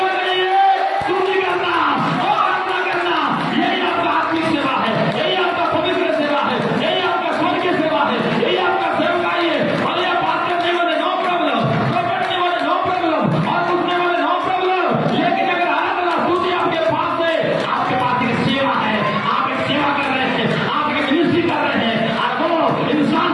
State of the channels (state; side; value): identical; both; correlation 1.00